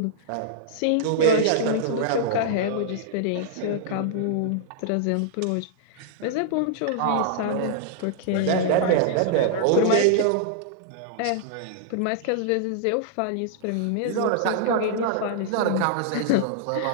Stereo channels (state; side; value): different; both; correlation -0.01